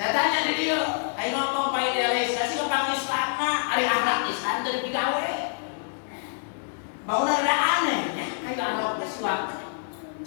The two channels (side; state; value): right; silent; digital silence